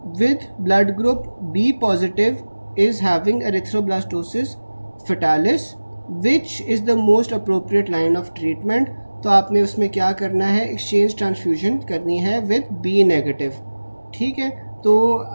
with blood group B positive is having erythroblastosis fetalis which is the most appropriate line of treatment। तो आपने उसमें क्या करना है, एक्सचेंज ट्रांसफ्यूजन करनी है विद बी नेगेटिव, ठीक है। तो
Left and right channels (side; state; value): both; inverted; correlation -1.00